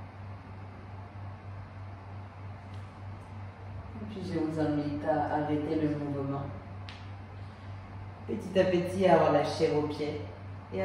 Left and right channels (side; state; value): both; identical; correlation 1.00